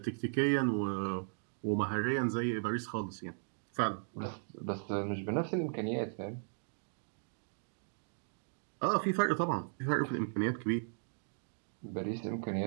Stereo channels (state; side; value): silent; left; digital silence